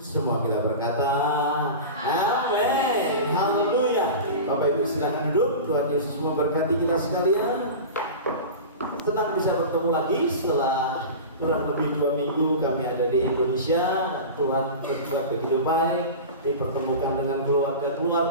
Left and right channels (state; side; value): inverted; both; correlation -0.30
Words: Semua kita berkata amin. Haleluya. Bapak Ibu silakan duduk. Tuhan Yesus memberkati kita sekalian. Senang bisa bertemu lagi setelah kurang lebih 2 minggu kami ada di Indonesia. Tuhan berbuat begitu baik, dipertemukan dengan